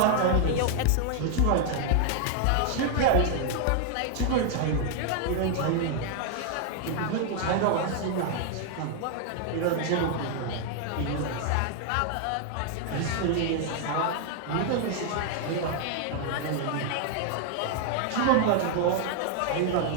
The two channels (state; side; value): different; both; correlation 0.00